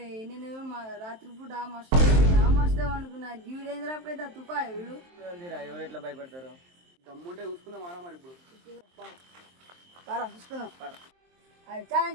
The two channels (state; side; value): late; left; 23 ms